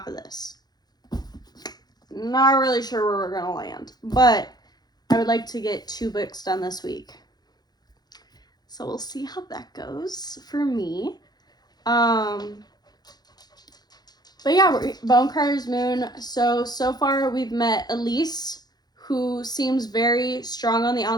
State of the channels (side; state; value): right; late; 0.19 ms